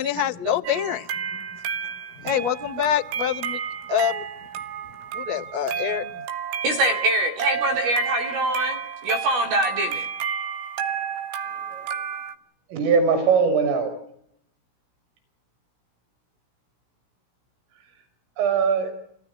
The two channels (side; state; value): left; late; 16 ms